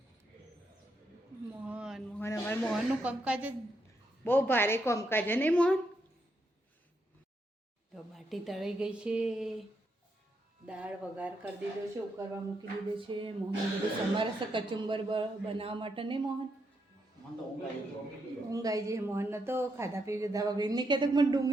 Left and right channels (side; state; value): both; normal; correlation 0.80